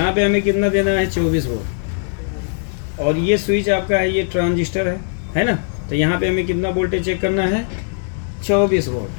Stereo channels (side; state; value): right; silent; 66 dB below the other